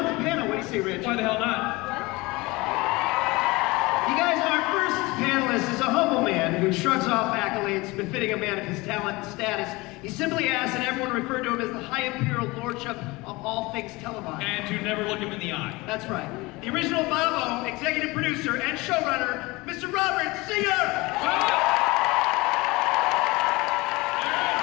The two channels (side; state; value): right; quieter; 22.7 dB